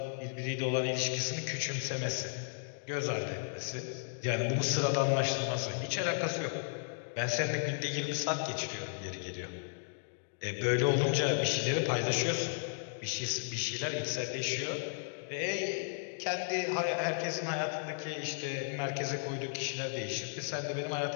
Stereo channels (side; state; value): right; silent; digital silence